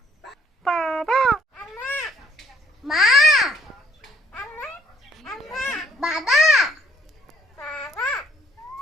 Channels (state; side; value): normal; both; correlation 0.62